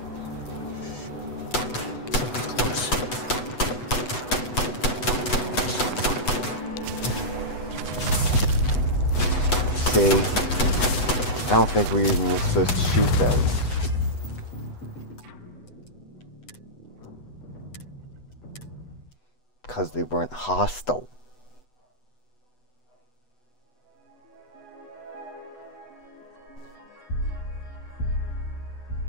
See, I don't think we even were supposed to shoot those. Because they weren't hostile.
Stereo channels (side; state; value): right; late; 8.0 ms